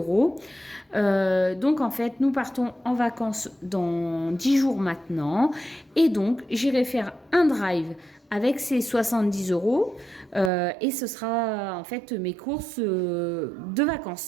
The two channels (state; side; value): drops out; left; at 10.5 s